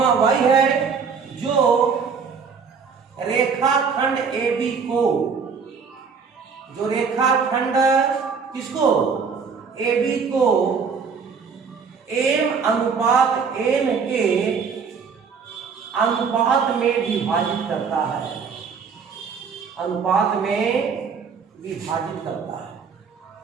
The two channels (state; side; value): quieter; left; 5.8 dB